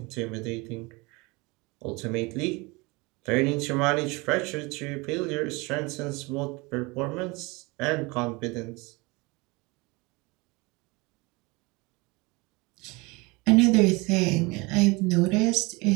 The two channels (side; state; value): left; quieter; 25.7 dB